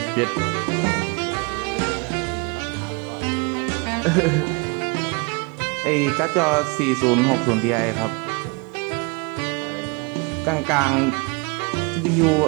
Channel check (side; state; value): left; quieter; 30.6 dB